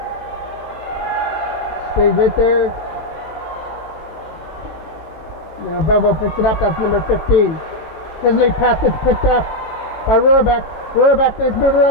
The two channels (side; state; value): right; late; 18 ms